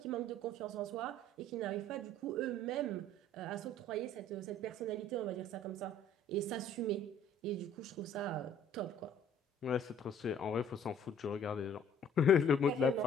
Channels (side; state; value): both; normal; correlation 0.55